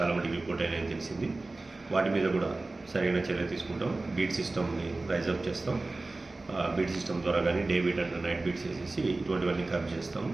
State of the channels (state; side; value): quieter; left; 3.2 dB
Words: మటుకు రిపోర్ట్ అయినాయని తెలిసింది. వాటి మీద కూడా సరైన చర్య తీసుకుంటాం. బీట్ సిస్టమ్ని రైజ్ అప్ చేస్తాం. బీట్ సిస్టమ్ ద్వారా కానీ డే బీట్ అంటే నైట్ బీట్స్ వేసేసి ఇటువంటివన్నీ కవర్ చేస్తాము.